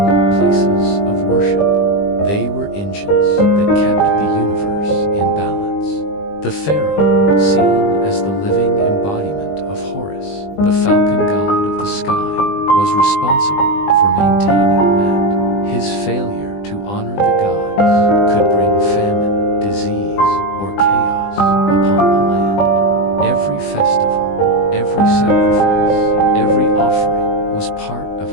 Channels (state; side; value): late; right; 20 ms